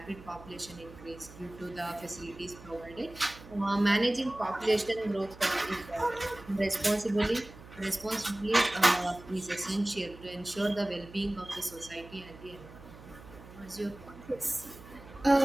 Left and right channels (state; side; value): noise; right; hum, 18 dB below the sound